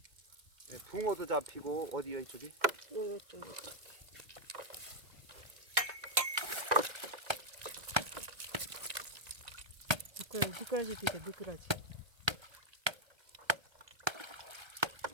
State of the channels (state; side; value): late; left; 2.1 ms